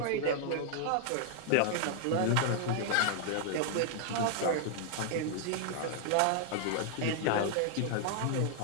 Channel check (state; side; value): different; both; correlation 0.00